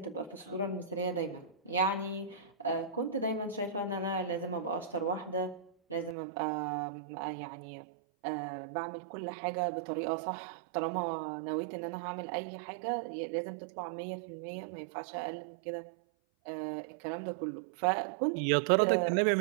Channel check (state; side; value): drops out; left; at 6.2 s